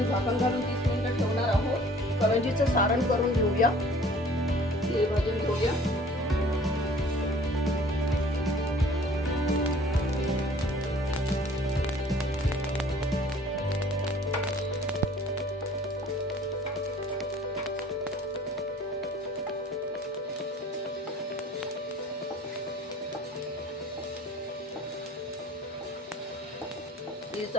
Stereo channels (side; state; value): both; normal; correlation 0.51